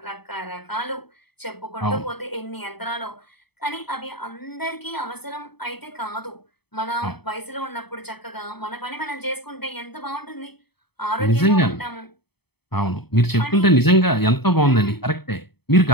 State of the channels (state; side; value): late; right; 0.97 ms